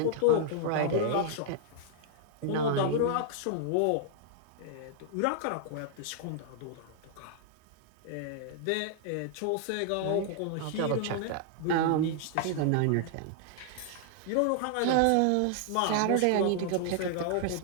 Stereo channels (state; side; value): different; both; correlation -0.01